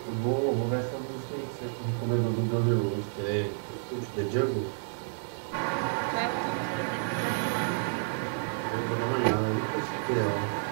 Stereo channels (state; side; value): silent; left; 58 dB below the other